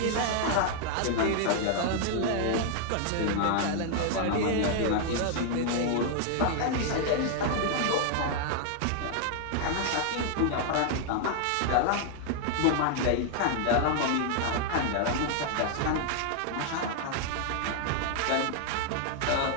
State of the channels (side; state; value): both; different; correlation 0.00